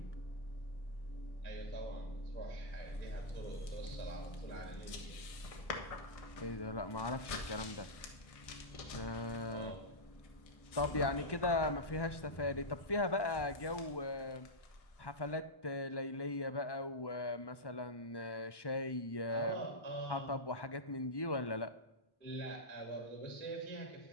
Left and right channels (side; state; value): right; late; 1.1 ms